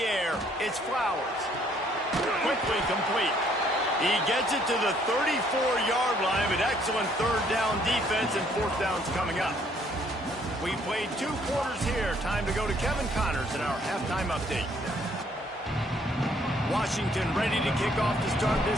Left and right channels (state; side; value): normal; both; correlation 0.65